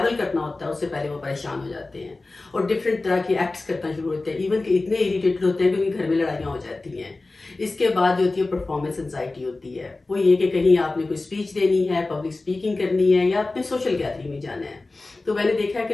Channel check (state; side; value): quieter; right; 3.3 dB